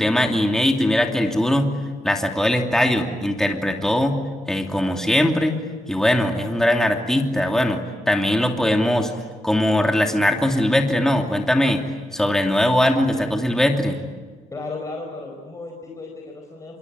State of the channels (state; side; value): normal; both; correlation 0.89